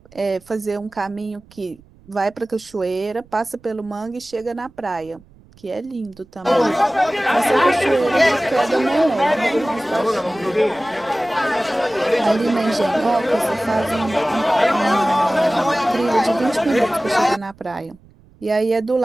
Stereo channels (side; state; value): right; noise; rumble, 27 dB below the sound